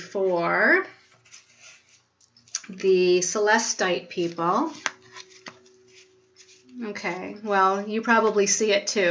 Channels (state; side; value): identical; both; correlation 1.00